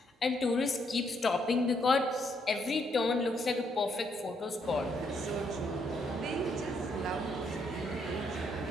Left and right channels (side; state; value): both; normal; correlation 0.74